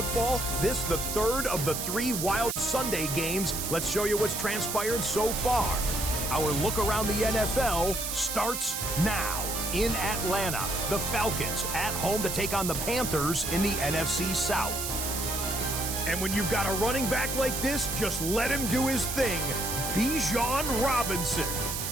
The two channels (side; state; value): right; noise; hiss, 3 dB below the sound